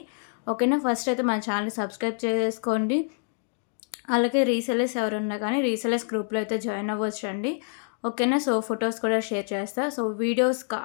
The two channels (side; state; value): right; silent; digital silence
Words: ఓకేనా, ఫస్ట్ అయితే మా ఛానల్ సబ్స్క్రైబ్ చేసుకోండి. అలాగే రీసెలర్స్ ఎవరున్నా కానీ రీసెలర్స్ గ్రూప్లో అయితే జాయిన్ అవ్వచ్చు అండి. ఓకేనా, సో ఫొటోస్ కూడా షేర్ చేస్తాను. సో వీడియోస్